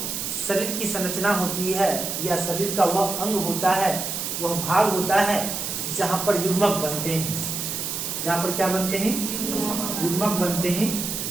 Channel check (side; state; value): right; noise; hiss, 3 dB below the sound